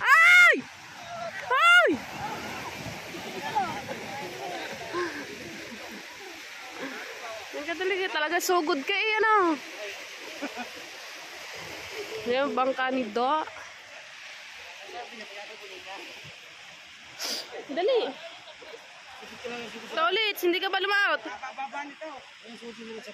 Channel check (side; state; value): both; identical; correlation 1.00